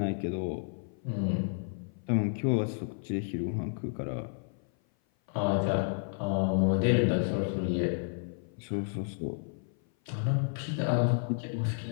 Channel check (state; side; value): silent; right; 55 dB below the other